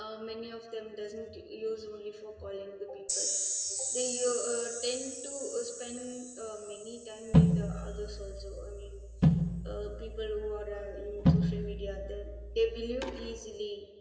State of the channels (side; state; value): both; identical; correlation 1.00